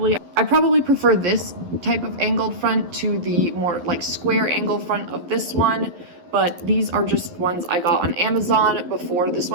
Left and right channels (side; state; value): left; late; 11 ms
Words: I probably prefer this type of angled front to the more like square angled front of this one, but these are just ones I got on Amazon before this